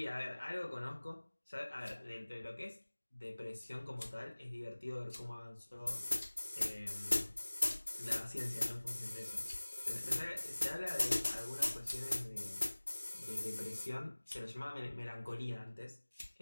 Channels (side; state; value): both; inverted; correlation -1.00